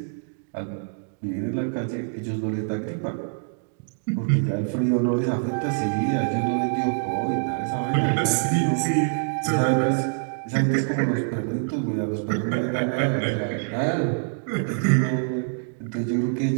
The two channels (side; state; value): left; silent; digital silence